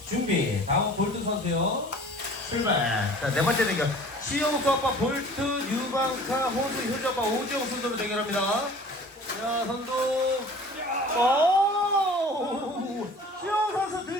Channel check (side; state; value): both; normal; correlation 0.46